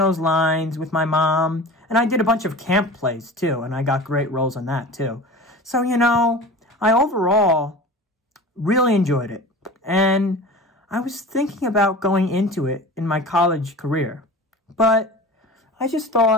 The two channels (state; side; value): normal; both; correlation 0.36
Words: lines with my mom. And I did a bunch of camp plays too. And I got great roles on that too. So, you know, I overall really enjoyed it. And I was thinking about going into it in my college career. But I just